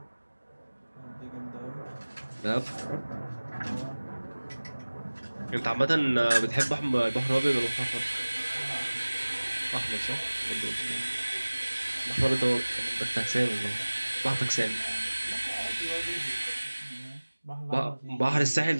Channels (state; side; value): inverted; both; correlation -1.00